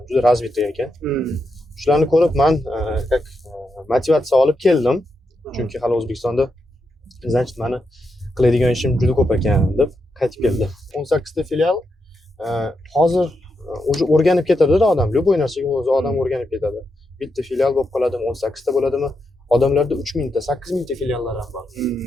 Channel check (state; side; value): normal; both; correlation 0.84